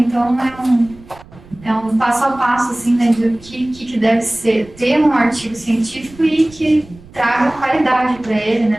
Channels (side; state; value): right; noise; rumble, 22 dB below the sound